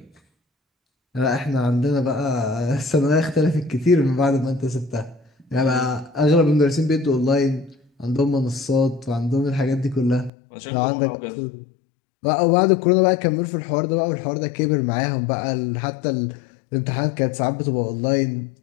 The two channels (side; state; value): right; drops out; at 10.3 s